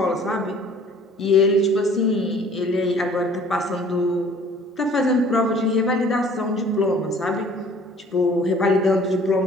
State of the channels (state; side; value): normal; both; correlation 0.52